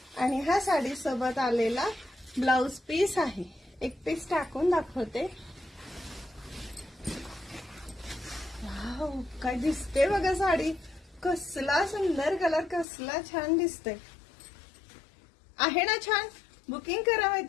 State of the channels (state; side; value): drops out; right; at 12.9 s